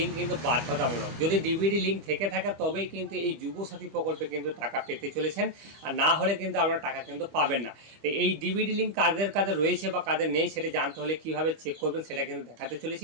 কিন্তু বাধ্যতামূলক। যদি ডিবিটি লিঙ্ক থেকে থাকে তবেই কিন্তু এই যুবসাথী প্রকল্পে কিন্তু টাকা পেতে চলেছেন, আর না হলে কিন্তু আপনারা টাকা কিন্তু পাবেন না। তো এই ডিবিটি লিঙ্ক কাদের কাদের রয়েছে বা কাদের নেই সেটা জানতে হলে কীভাবে চেক করবেন সেটা কিন্তু দেখাতে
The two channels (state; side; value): late; left; 25 ms